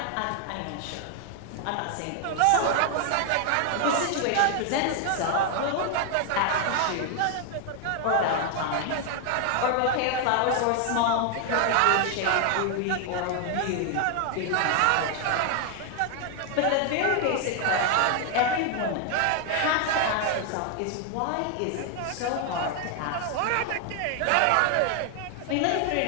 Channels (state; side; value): different; both; correlation 0.00